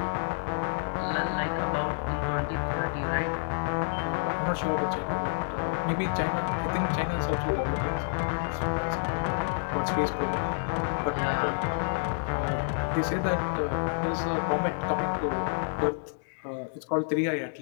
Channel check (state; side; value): silent; right; digital silence